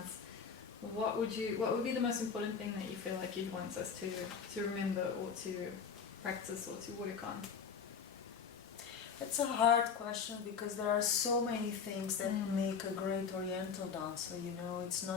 what would be the most important thing that you feel like you'd want us to remember or to practice or to work on? It's a hard question because there are so many things that make a great Oriental dancer, you know, it's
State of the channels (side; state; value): right; quieter; 6.3 dB